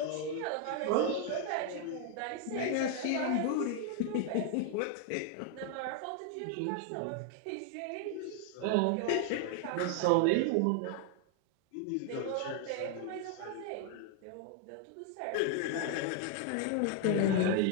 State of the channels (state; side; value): different; both; correlation 0.00